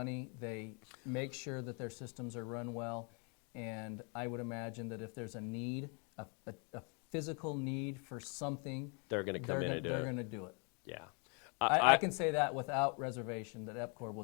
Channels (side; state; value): right; quieter; 35.6 dB